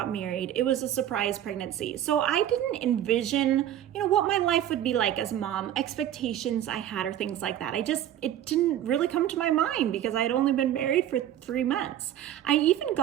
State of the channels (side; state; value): left; quieter; 11.5 dB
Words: married. It was a surprise pregnancy. So I didn't envision, what my life would be like as a mom, expectations I had or things like that. It didn't really come to my mind because I had only been married for 3 months. I even